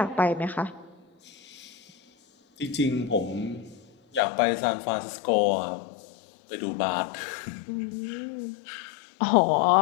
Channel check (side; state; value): right; drops out; at 4.2 s